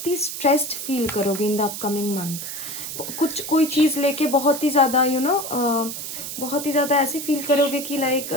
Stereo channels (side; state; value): right; noise; hiss, 7 dB below the sound